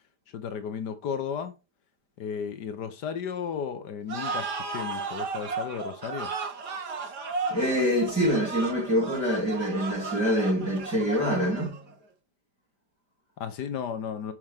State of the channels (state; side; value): late; right; 5.1 ms